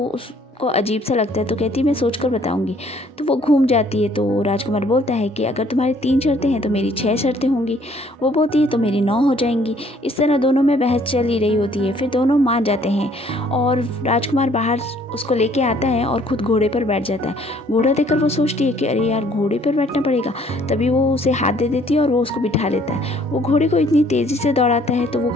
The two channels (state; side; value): normal; both; correlation 0.61